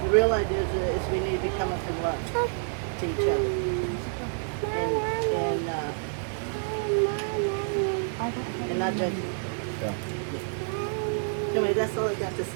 The real idea is we need to be coming from love to each other. And not judging. Yeah. Anyway, that's all I got to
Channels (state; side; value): silent; left; 57 dB below the other